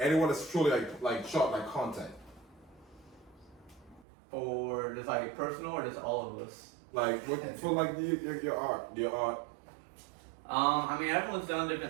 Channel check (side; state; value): left; drops out; at 4.0 s